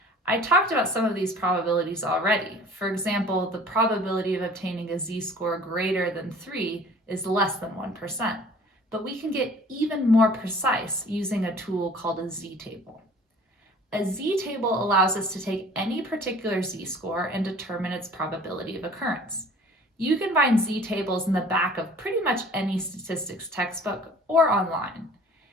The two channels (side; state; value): both; normal; correlation 0.49